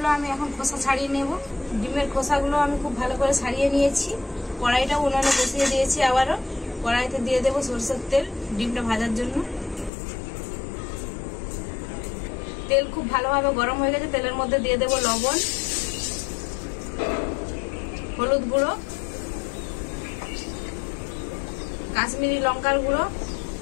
আমি এখন খোসা ছাড়িয়ে নেব। ডিমের খোসাগুলো আমি খুব ভালো করে ছাড়িয়ে নিয়েছি। কড়াইটা উনুনে বসিয়ে দিয়েছি। আবারও কড়াইতে দিয়ে দেবো সরষের তেল ডিমটা ভাজার জন্য। তেল খুব ভালোভাবে গরম হয়ে গেছে। তেলের মধ্যে দিয়ে দেবো লবণ, হলুদ গুঁড়ো, কাশ্মীরি লঙ্কার গুঁড়ো।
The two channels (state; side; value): drops out; right; at 9.9 s